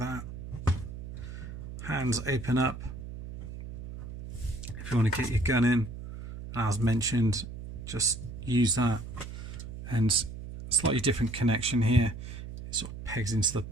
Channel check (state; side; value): noise; right; hum, 10 dB below the sound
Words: Hands open up if you want to get your gun in. As mentioned, just use that. And slightly different connection here. It sort of pegs into the